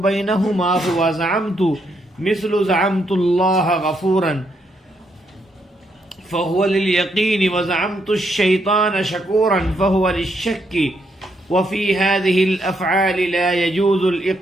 هو زعمت مثل زعمت الله غفورا فهو لليقين وزعمت الشيطان شكورا فهو للشك وفي هذه الأفعال لا يجوز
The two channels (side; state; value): both; normal; correlation 0.76